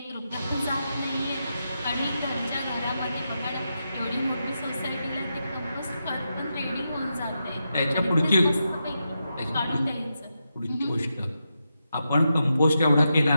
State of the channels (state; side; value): inverted; both; correlation -0.86